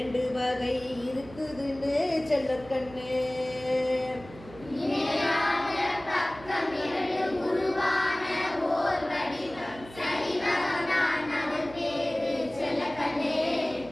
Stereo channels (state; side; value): noise; right; hum, 18 dB below the sound